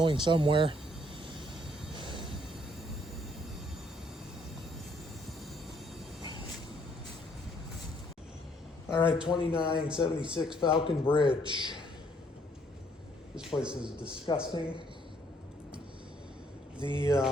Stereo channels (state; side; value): normal; both; correlation 0.66